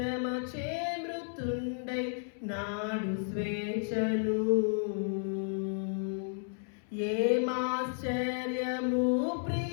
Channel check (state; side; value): silent; right; 56 dB below the other